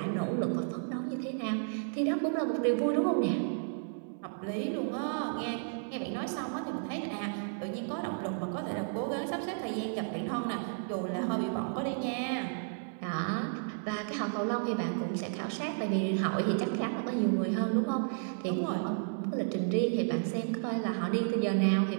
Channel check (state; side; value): silent; left; 56 dB below the other